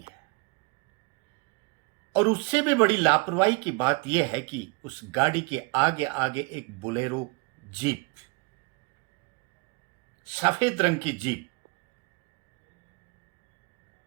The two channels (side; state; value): left; quieter; 28.1 dB